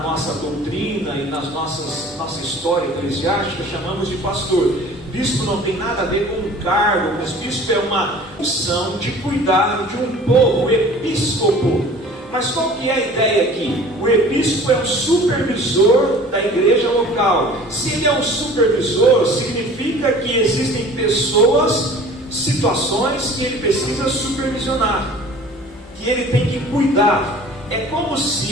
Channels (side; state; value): both; normal; correlation 0.45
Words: doutrina e nas nossa história eclesiástica, chamamos de pastor. Bispo não tem nada a ver com um cargo, mas bispo é uma função de cuidar de um povo, o episcopo. Mas qual que é a ideia aqui? O episcopo é um supervisor da igreja local. Se ele é um supervisor, significa que existem pessoas, situações que ele precisa supervisionar, que ele tem que cuidar. É como